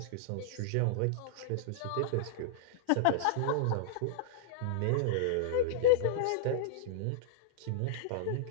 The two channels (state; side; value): different; both; correlation -0.01